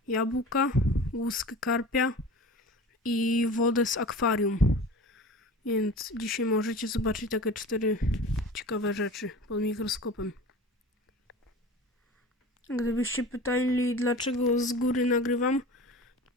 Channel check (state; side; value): normal; both; correlation 0.37